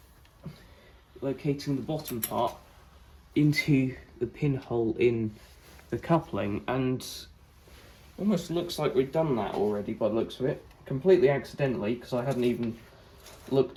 locating the bottom part into the pinhole in the coupling, and almost looks like we've done that already by the looks of it, completely accidentally, because I hadn't even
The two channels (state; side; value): identical; both; correlation 1.00